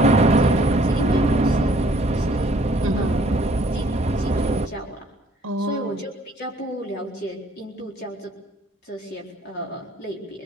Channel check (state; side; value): normal; both; correlation 0.60